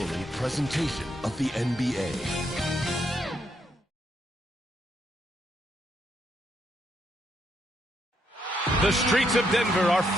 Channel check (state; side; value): normal; both; correlation 0.76